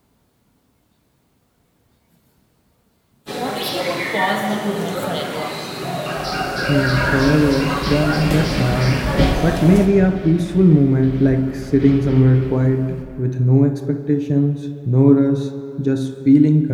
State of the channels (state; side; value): identical; both; correlation 1.00